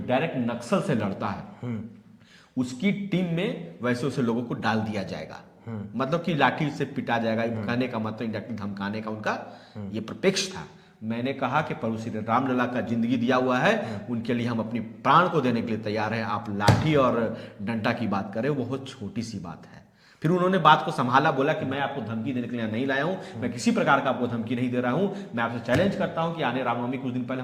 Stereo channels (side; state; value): both; identical; correlation 1.00